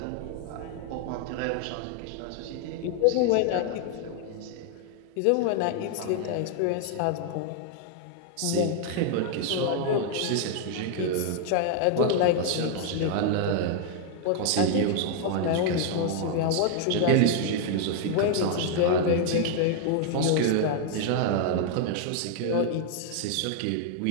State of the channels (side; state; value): both; different; correlation 0.00